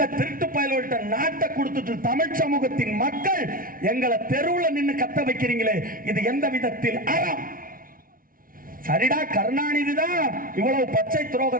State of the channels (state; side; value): late; left; 0.41 ms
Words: திருட்டு பயலோட்ட நாட்டை கொடுத்துட்டு தமிழ் சமூகத்தின் மக்கள் எங்களை தெருவுல நின்னு கத்த வைக்கிறீங்களே, இது எந்த விதத்தில் அறம்? சரிடா, கருணாநிதி தான் இவ்வளவு பச்சை